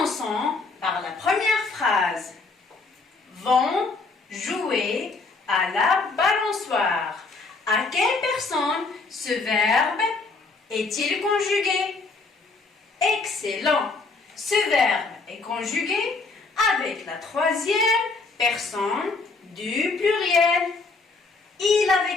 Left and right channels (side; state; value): right; quieter; 3.9 dB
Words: par la première phrase. Vont jouer à la balançoire. À quelle personne ce verbe est-il conjugué? Excellent. Ce verbe est conjugué avec la troisième personne du pluriel. Il